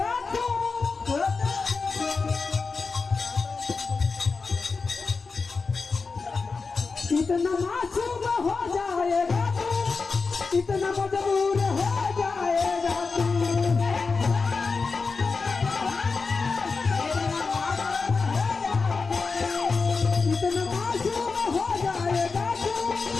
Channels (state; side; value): quieter; right; 4.5 dB